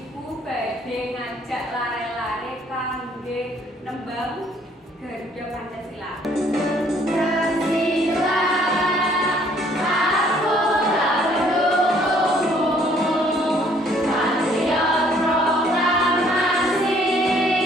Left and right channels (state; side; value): normal; both; correlation 0.62